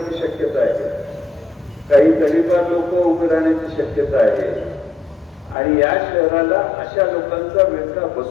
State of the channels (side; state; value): right; drops out; at 5.6 s